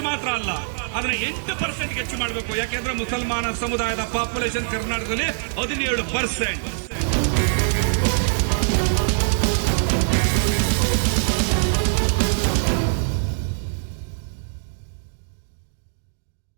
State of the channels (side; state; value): left; silent; digital silence